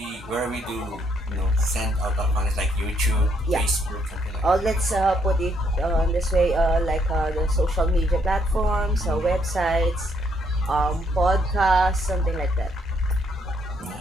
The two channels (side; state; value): both; normal; correlation 0.71